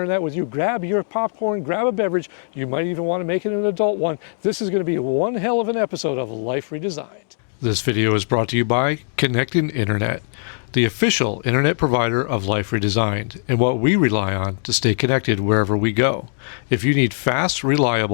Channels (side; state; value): right; silent; digital silence